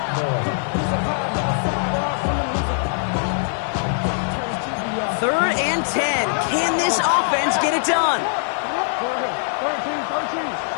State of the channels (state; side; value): silent; right; digital silence